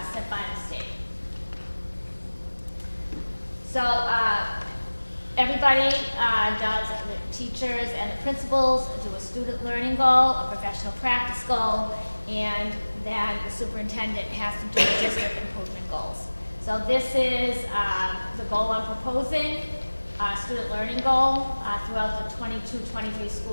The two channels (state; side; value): inverted; both; correlation -1.00